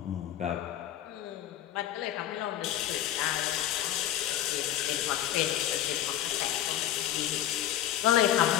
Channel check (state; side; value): quieter; right; 12.1 dB